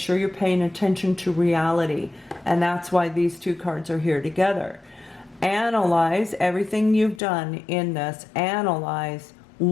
you're paying attention to reality. And that's why these two cards are here together. Analyze everything you've done in this. Analyze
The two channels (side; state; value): right; drops out; at 7.2 s